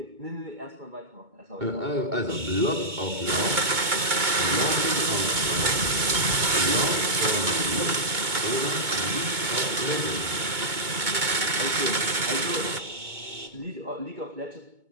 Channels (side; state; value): left; late; 2.2 ms